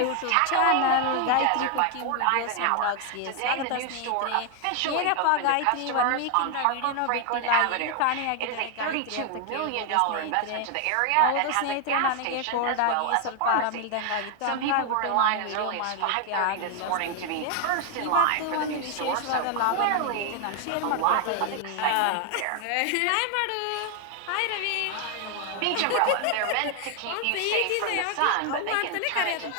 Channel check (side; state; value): both; different; correlation 0.00